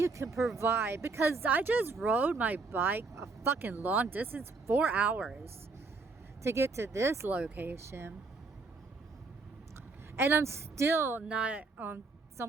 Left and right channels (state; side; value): quieter; left; 4.0 dB